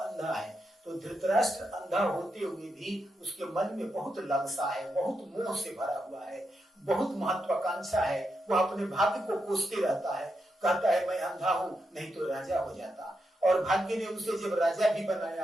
है, तो धृतराष्ट्र अंधा होते हुए भी उसके मन में बहुत लालसा है, बहुत मोह से भरा हुआ है, बहुत महत्वाकांक्षा है, वह अपने भाग्य को कोसते रहता है, कहता है मैं अंधा हूं नहीं तो राजा हो जाता, और भाग्य ने उसे जब राजा भी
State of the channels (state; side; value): normal; both; correlation 0.85